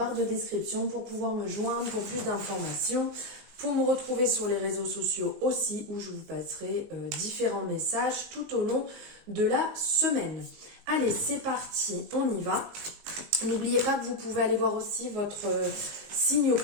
de description pour pouvoir me joindre pour plus d'informations, pour me retrouver sur les réseaux sociaux aussi où je vous passerai différents messages tout au long de la semaine. Allez, c'est parti, on y va. N'oubliez pas que vous pouvez aller voir aussi votre signe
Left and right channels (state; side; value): late; left; 19 ms